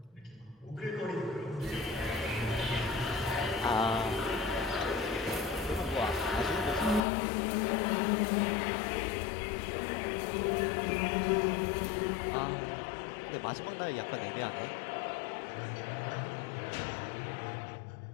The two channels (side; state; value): right; drops out; at 7.1 s